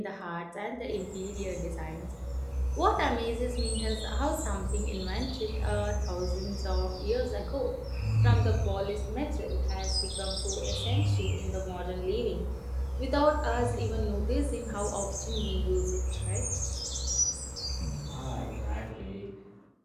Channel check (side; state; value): both; identical; correlation 1.00